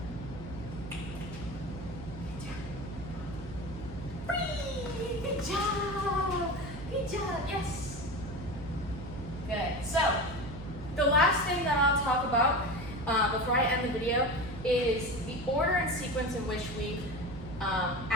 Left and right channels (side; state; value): right; noise; hum, 11 dB below the sound